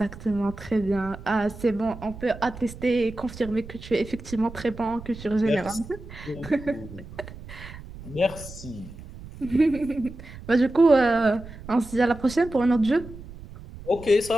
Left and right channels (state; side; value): noise; right; rumble, 15 dB below the sound